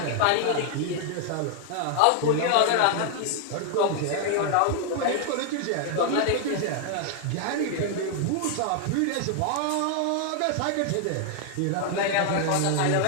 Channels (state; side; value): different; both; correlation 0.00